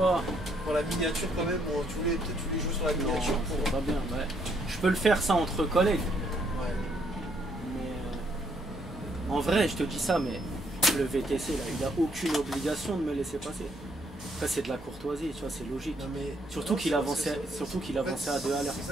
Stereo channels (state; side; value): normal; both; correlation 0.71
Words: Pour la miniature quand même, bon, tu voulais jouer sur la Non, miniature pour. ça va bien, ouais. Je peux le faire ça entre collègues. Ouais. Mais en vrai, je te dis ça, mais le VTC, là, il n'a aucune obligation de me laisser passer. Après, c'est de la courtoisie, tu vois, c'est logique. Non, mais, Surtout qu'il avançait à 2 à l'heure. C'est